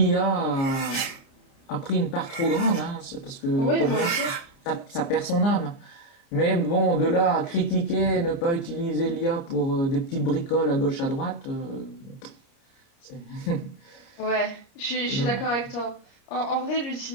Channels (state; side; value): late; right; 30 ms